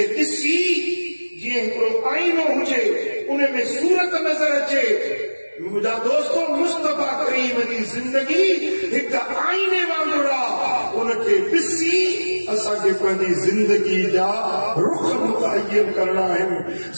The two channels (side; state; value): both; inverted; correlation -1.00